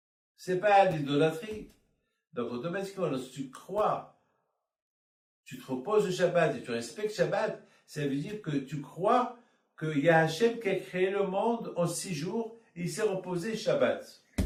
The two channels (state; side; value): identical; both; correlation 1.00